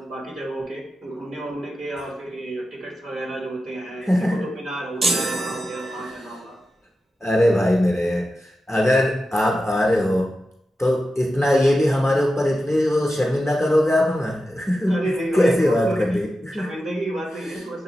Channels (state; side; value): normal; both; correlation 0.91